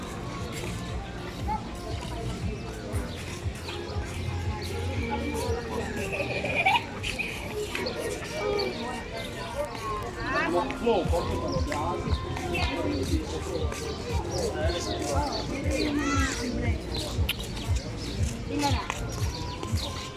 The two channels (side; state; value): both; identical; correlation 1.00